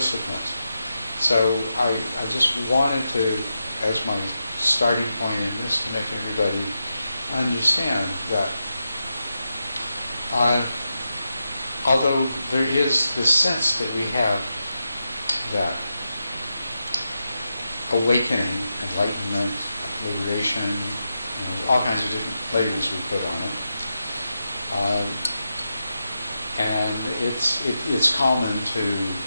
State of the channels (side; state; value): both; inverted; correlation -0.88